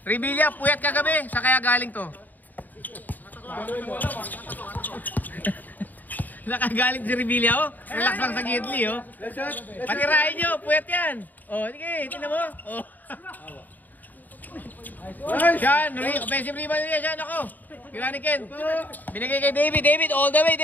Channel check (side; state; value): right; late; 0.085 ms